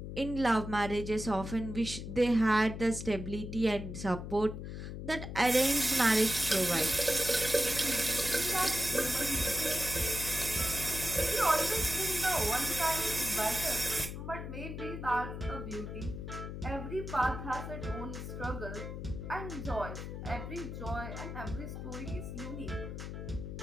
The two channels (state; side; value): noise; left; hum, 7 dB below the sound